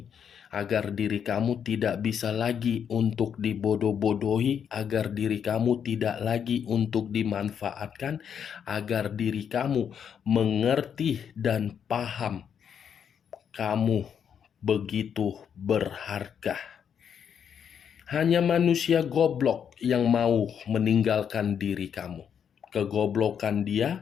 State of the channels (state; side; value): quieter; right; 7.9 dB